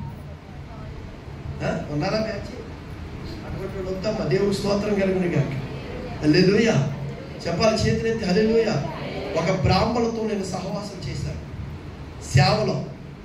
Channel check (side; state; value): both; identical; correlation 1.00